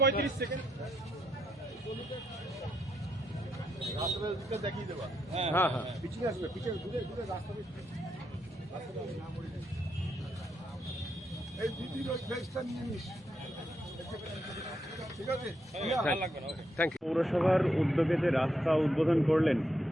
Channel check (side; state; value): both; normal; correlation 0.80